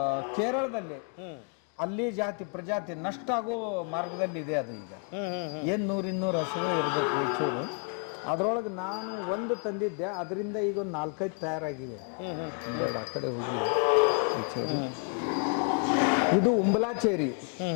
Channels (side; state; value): right; quieter; 38.7 dB